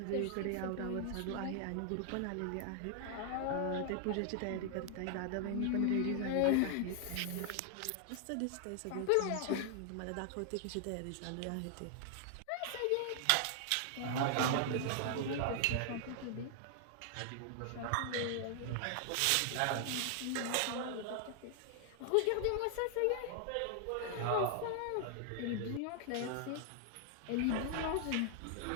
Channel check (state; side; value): different; both; correlation 0.00